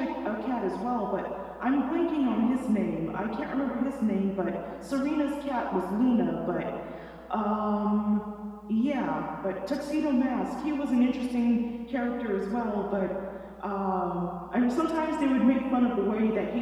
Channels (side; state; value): both; identical; correlation 1.00